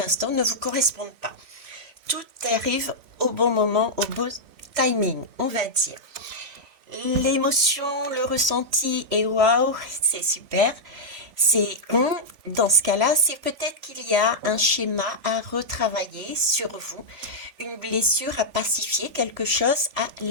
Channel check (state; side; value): late; left; 3.4 ms